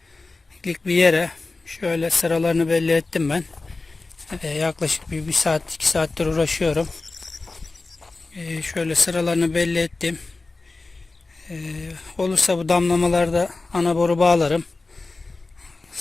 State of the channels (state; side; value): quieter; right; 3.5 dB